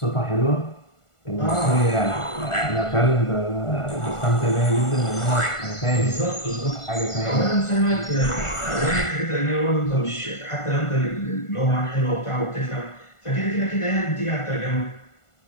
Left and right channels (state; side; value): late; right; 1.4 ms